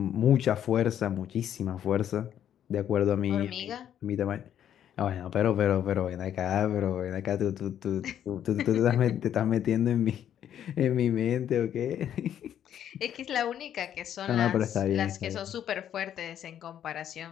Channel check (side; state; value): right; quieter; 10.1 dB